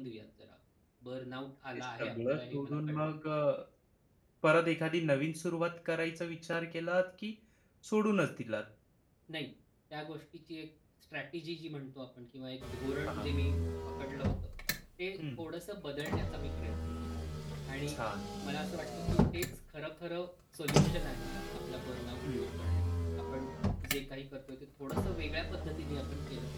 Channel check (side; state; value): both; identical; correlation 1.00